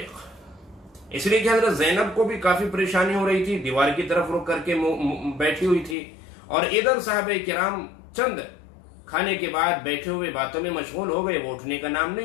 اس لیے کہ حضرت زینب کو بھی کافی پریشانی ہو رہی تھی، دیوار کی طرف رک کر کے بیٹھی ہوئی تھی، اور ادھر صحابہ کرام چند کھانے کے بعد بیٹھے ہوئے باتوں میں مشغول ہو گئے، وہ اٹھنے کا نام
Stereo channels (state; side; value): drops out; right; at 6.0 s